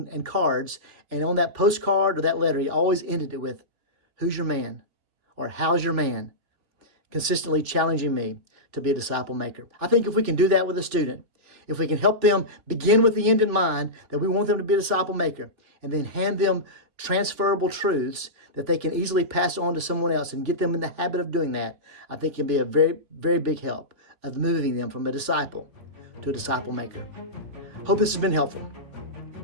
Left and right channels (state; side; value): late; left; 3.4 ms